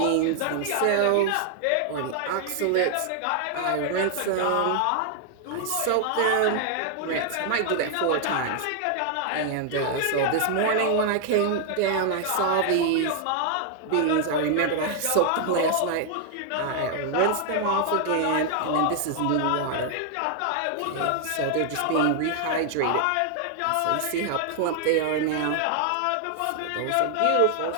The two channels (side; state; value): both; different; correlation 0.00